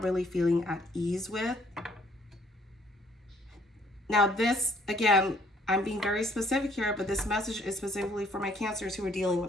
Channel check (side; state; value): both; normal; correlation 0.63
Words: really feeling at ease with. Now this, again, I'm being very specific here, but this message is specifically for my Cancers who are dealing with